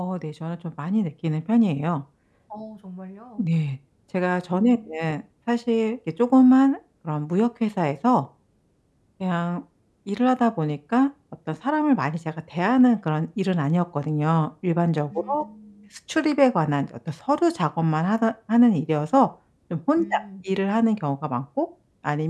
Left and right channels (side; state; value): both; identical; correlation 1.00